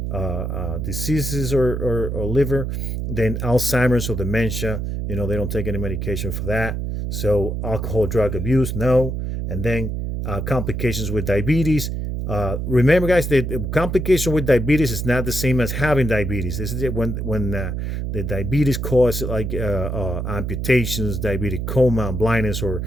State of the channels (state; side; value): noise; right; hum, 3 dB below the sound